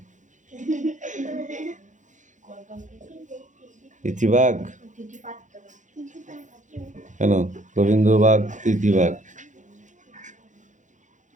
তিথি বাঘ? কেন গোবিন্দ বাঘ তিথি বাঘ?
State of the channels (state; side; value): late; left; 0.36 ms